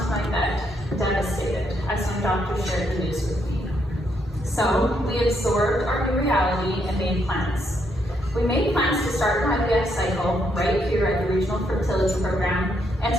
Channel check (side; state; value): both; normal; correlation 0.76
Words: my bed, devastated, as my doctor shared the news with me. So we absorbed our new reality and made plans. We made plans to start an IVF cycle right here at the Regional Fertility Program and